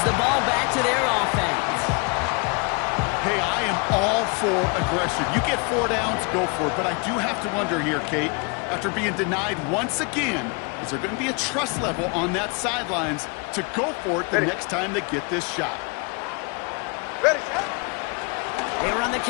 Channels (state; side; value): quieter; right; 32.0 dB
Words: the ball back to their offense. Hey, I am all for aggression. You get 4 downs, go for it. But I do have to wonder here, Kate, after being denied once again, is there going to be a trust level on that sidelines to go for it the next time they get this shot? Ready, set. They run the